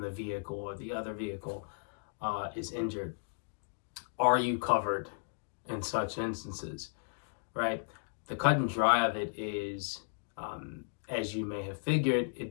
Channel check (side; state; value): right; silent; digital silence